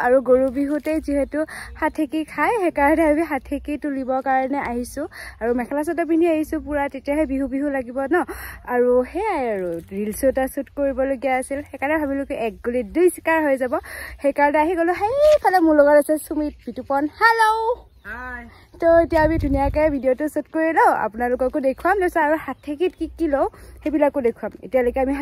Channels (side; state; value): both; identical; correlation 1.00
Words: আৰু গৰু বিহুতে যেহেতু হাঠেকি খাই হেকাৰণে আমি হাঠেকি তুলিবৰ কাৰণে আহিছো আৰু মেখেলা চাদৰ পিন্ধি আহিছো পুৰা তেতিয়াহে বিহু বিহু লাগিব ন আৰু হেয়াই আৰু ৰিলছ এটা শুট কৰিবলগীয়া আছিল হেকাৰণে ভাবিলো কি এক গুলি দুই শিকাৰ হৈ যাব হেকাৰণে আহি গলো হেইফালে মোৰ লগত আছে সুমিত বিতুপন হেল্ল হাই তো এতিয়া আমি ধুনিয়াকে ভিডিওটো শুট কৰি লও আপোনালোককো দেখুৱাম লৈছো আৰু হাঠেকিত কি লও হেবিলাকো দেখুৱাম এতিয়ালৈকে আমি